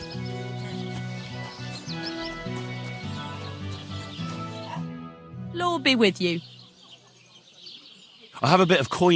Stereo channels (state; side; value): identical; both; correlation 1.00